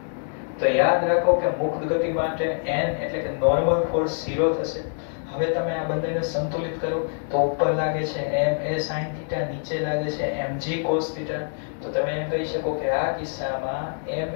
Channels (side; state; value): right; silent; digital silence